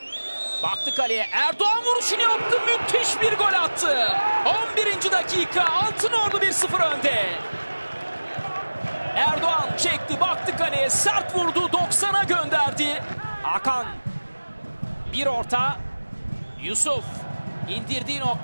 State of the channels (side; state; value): both; inverted; correlation -1.00